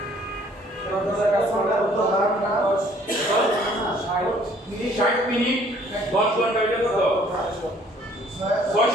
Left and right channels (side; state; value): both; normal; correlation 0.59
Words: 60 মিনিট 10 ঘন্টা, এটা কত?